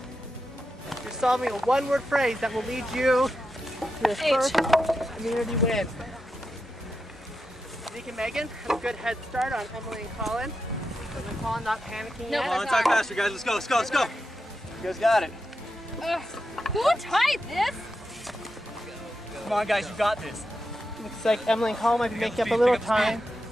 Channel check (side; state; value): both; normal; correlation 0.88